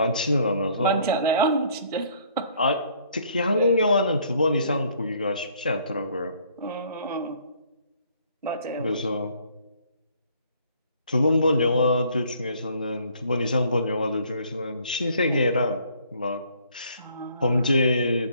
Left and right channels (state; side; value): inverted; both; correlation -0.61